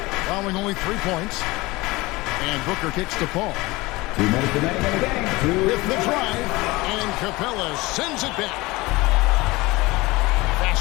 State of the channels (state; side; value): quieter; right; 21.8 dB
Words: allowing only 3 points. And Booker kicks to Paul. 2 minutes remaining in the game. With the drive, and Capella sends it back.